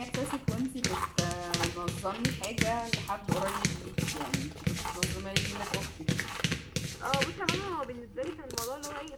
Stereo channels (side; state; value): both; identical; correlation 1.00